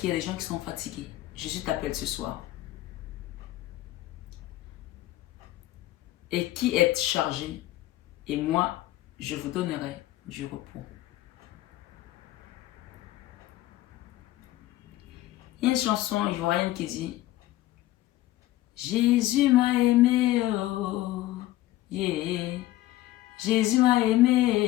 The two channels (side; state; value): right; quieter; 15.9 dB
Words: y a des gens qui sont fatigués. Jésus t'appelle ce soir. Et qui êtes chargé, et moi, je vous donnerai du repos. Il y a une chanson ivoirienne qui dit Jésus m'a aimé, oh, yeah. Jésus m'a